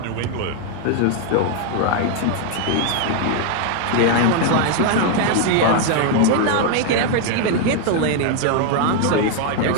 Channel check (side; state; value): both; different; correlation 0.00